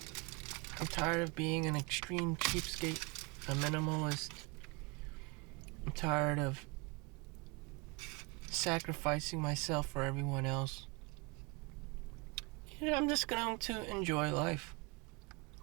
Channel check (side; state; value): left; quieter; 29.2 dB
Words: I'm tired of being an extreme cheapskate, a minimalist. I'm tired of sacrificing myself for everyone else. I'm just going to enjoy life.